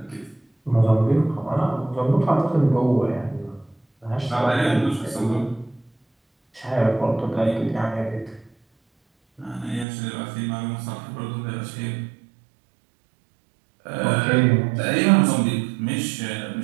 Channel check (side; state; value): left; drops out; at 9.9 s